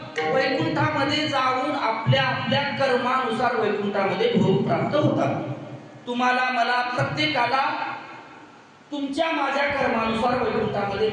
वैकुंठामध्ये जाऊन आपल्या आपल्या कर्मानुसार वैकुंठामध्ये भोग प्राप्त होतात. तुम्हाला मला प्रत्येकाला तुमच्या माझ्या कर्मानुसार वैकुंठामध्ये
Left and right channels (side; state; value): both; identical; correlation 1.00